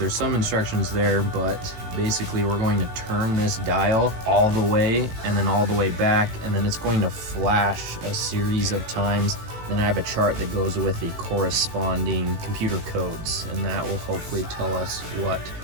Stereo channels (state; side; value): late; left; 18 ms